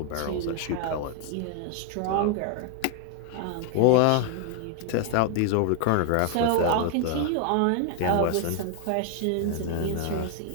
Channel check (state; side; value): different; both; correlation 0.00